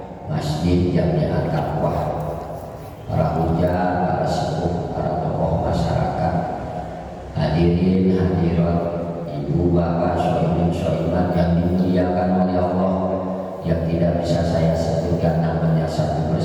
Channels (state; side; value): identical; both; correlation 1.00